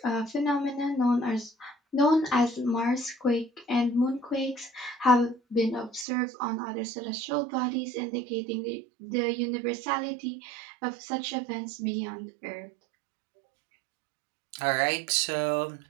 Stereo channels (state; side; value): drops out; left; at 6.1 s